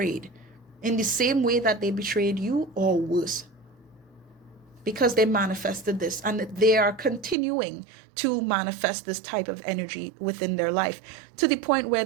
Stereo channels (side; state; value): left; drops out; at 7.4 s